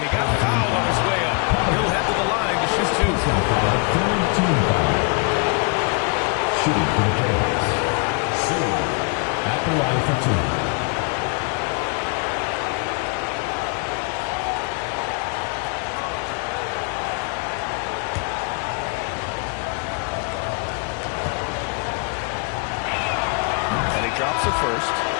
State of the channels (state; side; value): quieter; right; 35.9 dB